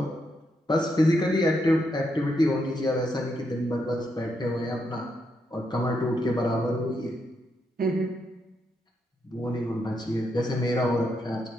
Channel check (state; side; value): normal; both; correlation 0.80